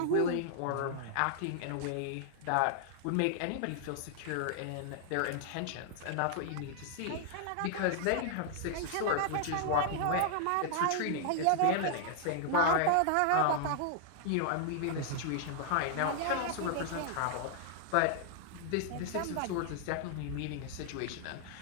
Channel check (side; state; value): both; different; correlation -0.01